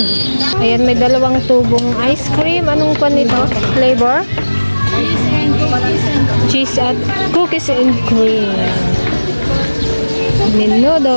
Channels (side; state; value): both; inverted; correlation -1.00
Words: Ayan, may dalawang tubong ice cream. Anong pa nito? Flavor? Cheese at cookies and cream.